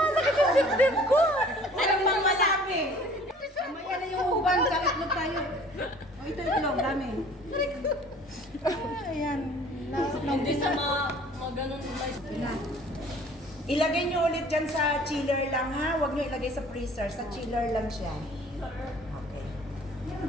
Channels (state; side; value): normal; both; correlation 0.51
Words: yung dibdib ko. Ano pang masabi? Mamaya na yung uban, sa itlog tayo. O, ito itlog, dami. Ayan. Hindi sa mga ganun na Ilagay nyo ulit dyan sa chiller lang ha. Huwag nyo ilagay sa freezer. Sa chiller lang siya. Okay.